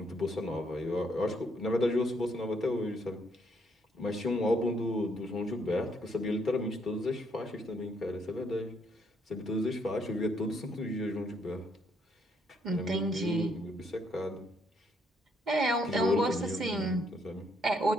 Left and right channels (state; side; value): normal; both; correlation 0.71